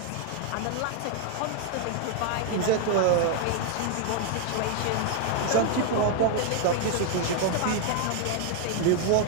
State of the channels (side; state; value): both; different; correlation 0.00